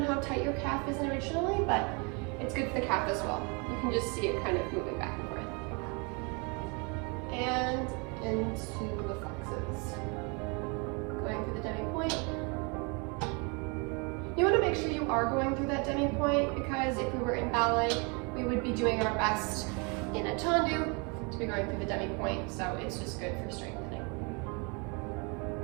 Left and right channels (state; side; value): quieter; left; 32.3 dB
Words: how tight your calf is originally, but it's good for the calf as well. You can just see it kind of moving back and forth. And into the flexes. Going through the demi-point. You want to make sure you are going through that demi-point, because if we were in ballet, we would be doing our best in a tendu to be going through the demi-point, so it's just good for strengthening.